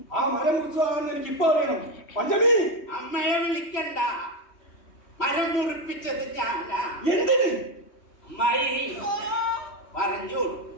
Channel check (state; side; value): late; right; 3.2 ms